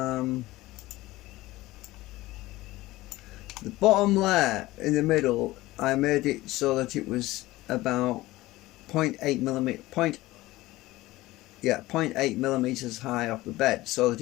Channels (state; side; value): quieter; right; 18.3 dB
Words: The bottom layer in the middle, I made it so that it was about 0.8 millimeters high off the bed, so that